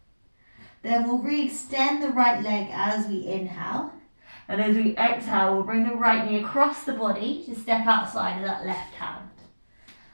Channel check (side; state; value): both; inverted; correlation -1.00